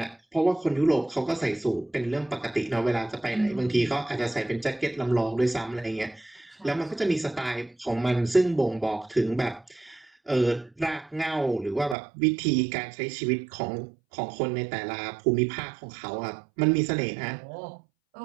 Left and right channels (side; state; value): left; drops out; at 12.0 s